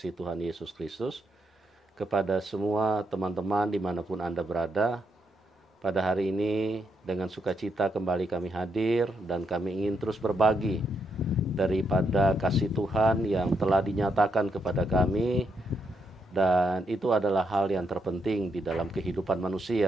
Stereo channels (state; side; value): normal; both; correlation 0.79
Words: Tuhan Yesus Kristus. Kepada semua teman-teman dimanapun Anda berada, pada hari ini dengan sukacita kembali kami hadir dan kami ingin terus berbagi daripada kasih Tuhan yang telah dinyatakan kepada kami, dan itu adalah hal yang terpenting di dalam kehidupan